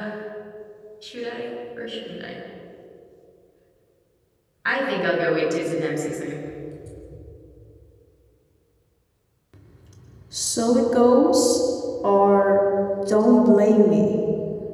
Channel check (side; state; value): both; identical; correlation 1.00